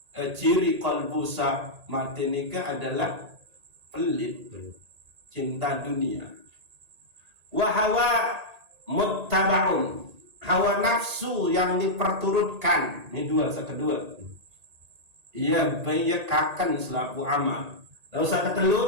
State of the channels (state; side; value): late; left; 1.8 ms